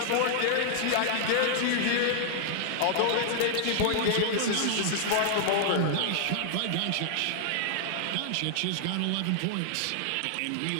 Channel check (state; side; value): different; both; correlation -0.01